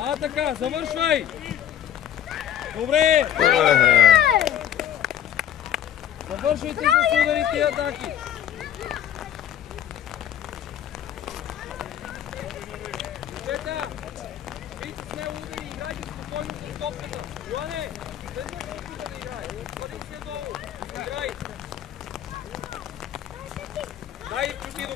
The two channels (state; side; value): quieter; right; 10.3 dB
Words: Така, завършвай! Добре! Завършвайте с ударите и атаки. Момчета, вийте с нея удари и играйте спокойно с топката. Йоане, след топката да играе. Отвади се долу. Играй. Дай Ивчо